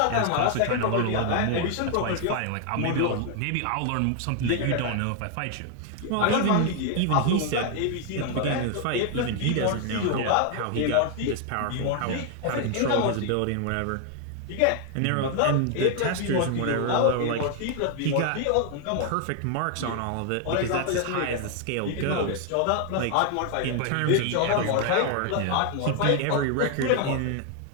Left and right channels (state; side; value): different; both; correlation 0.00